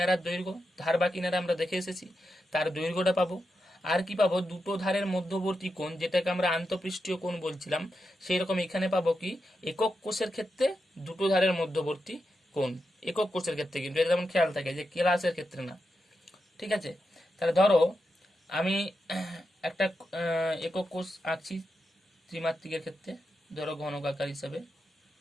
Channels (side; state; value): both; normal; correlation 0.87